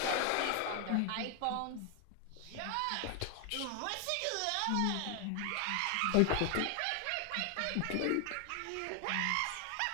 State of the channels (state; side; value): different; both; correlation 0.00